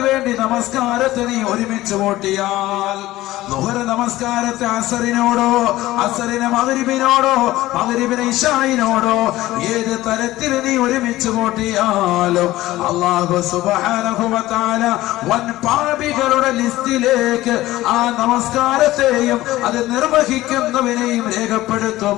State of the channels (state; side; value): quieter; right; 16.6 dB